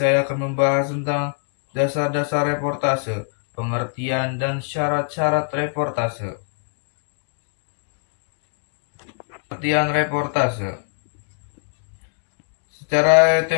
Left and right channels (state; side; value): silent; right; digital silence